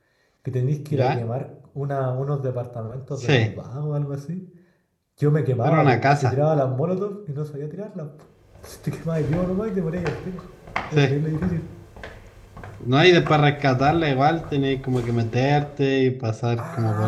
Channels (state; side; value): identical; both; correlation 1.00